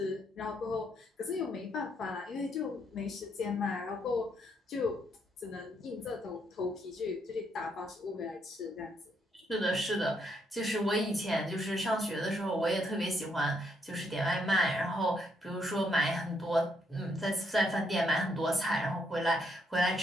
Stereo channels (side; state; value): both; normal; correlation 0.74